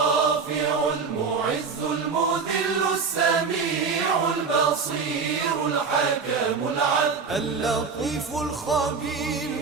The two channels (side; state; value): left; quieter; 5.2 dB